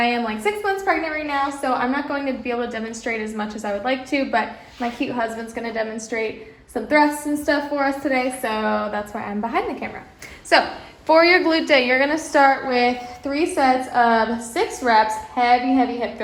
am like 6 months pregnant right now, so I'm not going to be able to demonstrate as much as I would like to, but my cute husband's gonna demonstrate some thrusts and stuff for us today, so that's why I'm behind the camera. So for your glute day, you're gonna start with 3 sets of 6 reps, heavy hip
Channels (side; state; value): both; identical; correlation 1.00